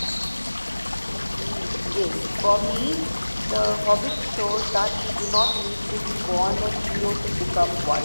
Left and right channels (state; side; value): inverted; both; correlation -1.00